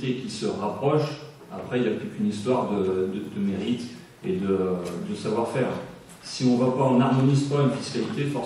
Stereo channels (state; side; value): identical; both; correlation 1.00